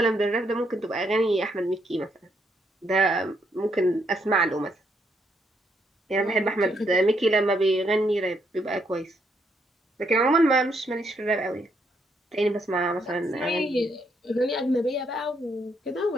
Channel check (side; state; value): both; normal; correlation 0.75